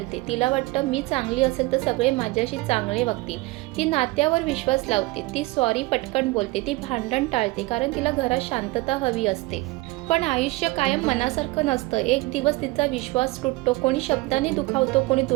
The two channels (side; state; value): left; quieter; 21.6 dB